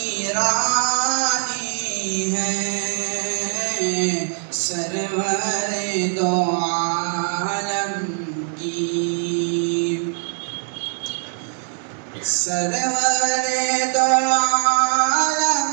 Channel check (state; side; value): silent; left; digital silence